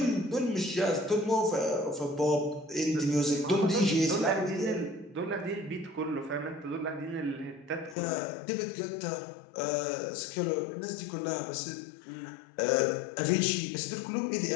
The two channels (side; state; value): right; drops out; at 8.0 s